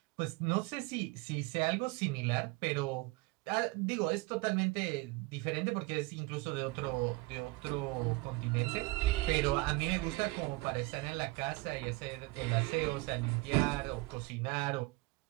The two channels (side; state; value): left; quieter; 23.1 dB